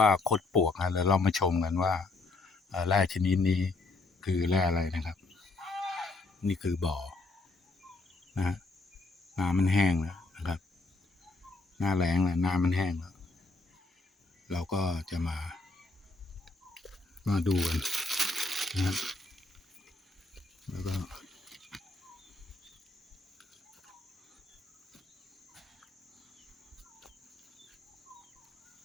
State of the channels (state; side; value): quieter; right; 3.3 dB